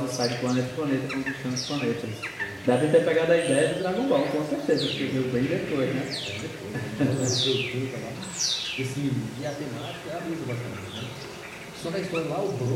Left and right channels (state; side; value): identical; both; correlation 1.00